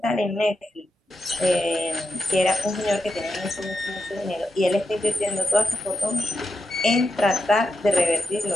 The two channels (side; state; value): both; normal; correlation 0.87